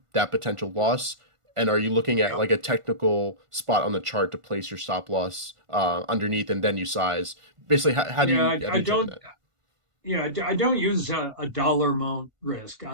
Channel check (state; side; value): late; left; 1.5 ms